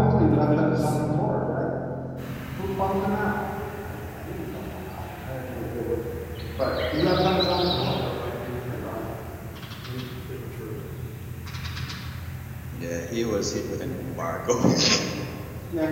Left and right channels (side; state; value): both; identical; correlation 1.00